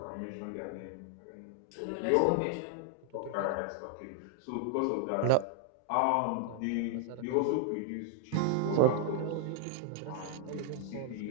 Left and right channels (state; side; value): different; both; correlation 0.00